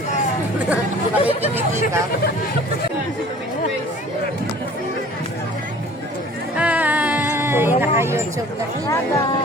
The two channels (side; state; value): both; normal; correlation 0.48